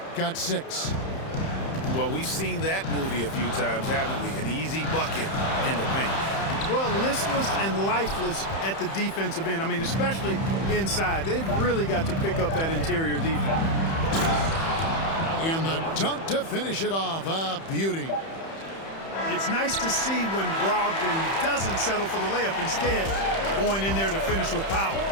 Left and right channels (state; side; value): late; right; 31 ms